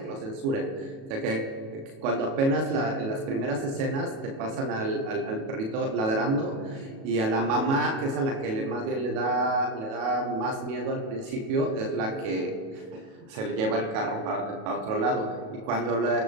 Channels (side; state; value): left; late; 37 ms